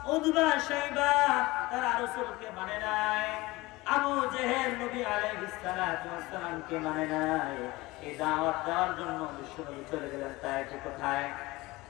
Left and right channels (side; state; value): right; quieter; 20.9 dB